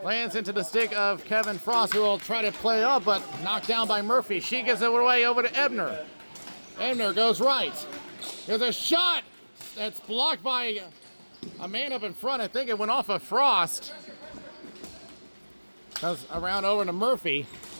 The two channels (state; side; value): inverted; both; correlation -1.00